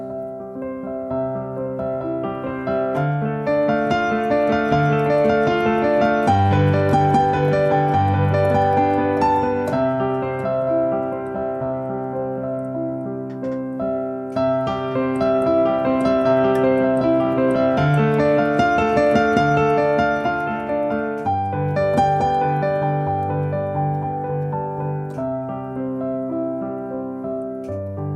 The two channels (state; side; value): identical; both; correlation 1.00